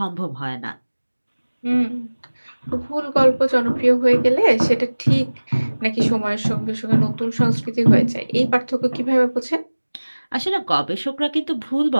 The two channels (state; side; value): inverted; both; correlation -1.00